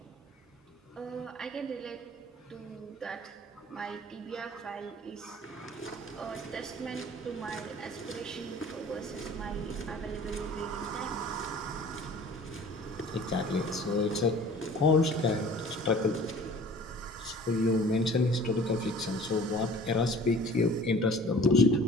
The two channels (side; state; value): both; normal; correlation 0.47